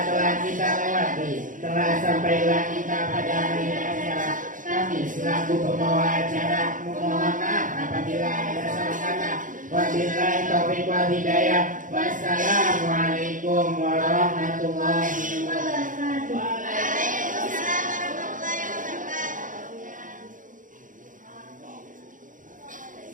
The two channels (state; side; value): late; left; 0.38 ms